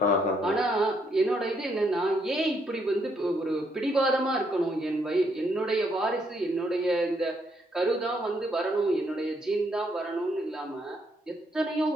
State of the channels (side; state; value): both; normal; correlation 0.73